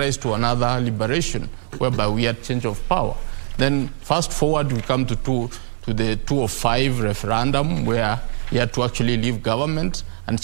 to another liberation, whereby we had change of power. Then fast forward, we come to the 2005 referendum, where he had to actually leave government and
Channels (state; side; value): silent; left; 64 dB below the other